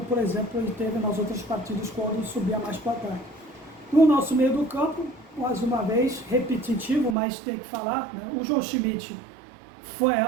por exemplo, ele teve nas outras partidas quando subia mais para cá. No nosso meio do campo, mais uma vez, repetitivo, mas tem que falar, né? O João Schmidt foi a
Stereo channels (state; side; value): drops out; left; at 7.2 s